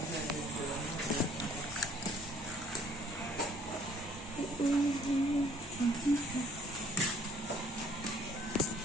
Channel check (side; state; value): both; normal; correlation 0.59